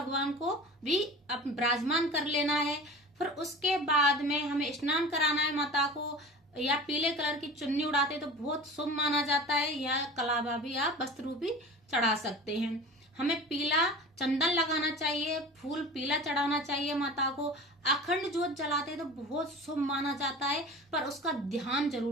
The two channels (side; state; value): both; normal; correlation 0.37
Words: को भी विराजमान कर लेना है। फिर उसके बाद में हमें स्नान कराना है माता को। या पीले कलर की चुन्नी उड़ाते तो बहुत शुभ माना जाता है, या कलावा भी आप वस्त्र भी चढ़ा सकते हैं। हमें पीला चंदन लगाना चाहिए, फूल पीला चढ़ाना चाहिए माता को। अखंड जोत जलाते तो बहुत शुभ माना जाता है, पर उसका ध्यान